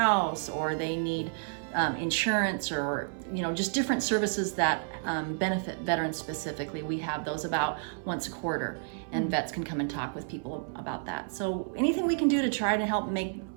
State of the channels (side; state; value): left; silent; 57 dB below the other